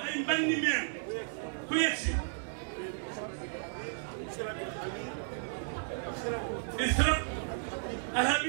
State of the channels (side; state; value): left; silent; digital silence